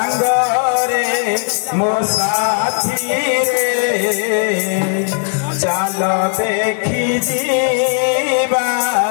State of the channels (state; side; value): silent; right; 67 dB below the other